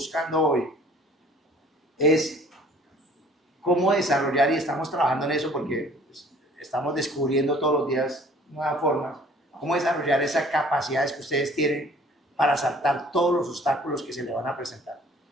hoy es cómo desarrollar, y estamos trabajando en eso porque estamos descubriendo todos los días nuevas formas, cómo desarrollar esas capacidades que ustedes tienen para saltar todos los obstáculos que se le van a presentar.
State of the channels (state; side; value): normal; both; correlation 0.53